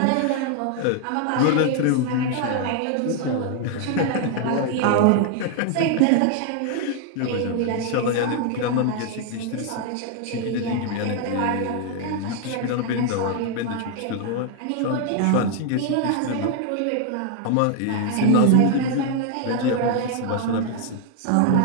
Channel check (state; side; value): different; both; correlation 0.00